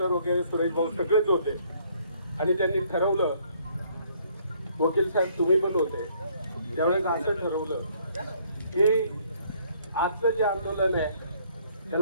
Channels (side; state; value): both; inverted; correlation -0.63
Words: वगैरे सुरेश भाऊ सगळेच होते. आणि त्यांनी ठरवलं, वकील साहेब तुम्ही पण होते त्यावेळेस, असं ठरवलं की आजचं जे आंदोलन आहे